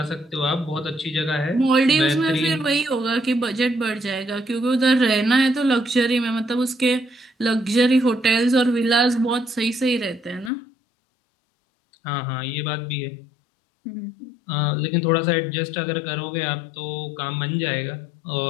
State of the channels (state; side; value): drops out; right; at 10.5 s